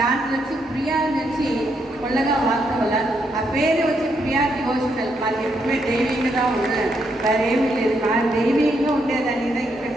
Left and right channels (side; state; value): both; normal; correlation 0.77